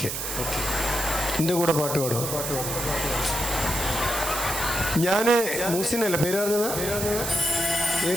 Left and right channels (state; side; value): noise; right; hiss, 4 dB below the sound